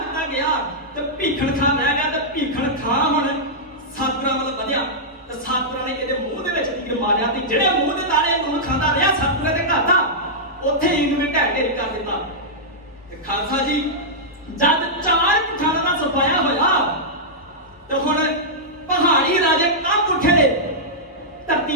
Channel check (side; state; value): both; normal; correlation -0.10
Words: ਗਿਆ ਤੇ ਭੀਖਣ ਖਾਂ ਰਹਿ ਗਿਆ ਤੇ ਭੀਖਣ ਖਾਂ ਹੁਣ ਸਤਗੁਰਾਂ ਵੱਲ ਵਧਿਆ ਤੇ ਸਤਗੁਰਾਂ ਨੇ ਇਹਦੇ ਮੂੰਹ ਦੇ ਵਿੱਚ ਤੀਰ ਮਾਰਿਆ ਤੇ ਜਿਹੜੇ ਮੂੰਹ ਦੇ ਤਾਲੇ ਨੂੰ ਖਾਂਦਾ ਰਿਹਾ ਸਤਗੁਰਾਂ ਦੇ ਘਰ ਦਾ ਉੱਥੇ ਹੀ ਇਹਨੂੰ ਢਹਿ ਢੇਰੀ ਕਰ ਦਿੱਤਾ ਤੇ ਖਾਲਸਾ ਜੀ ਜਦ ਚਾਰ ਪਠਾਨਾਂ ਦਾ ਸਫਾਇਆ ਹੋਇਆ ਤੇ ਹੁਣ ਪਹਾੜੀ ਰਾਜੇ ਕੰਬ ਉੱਠੇ ਨੇ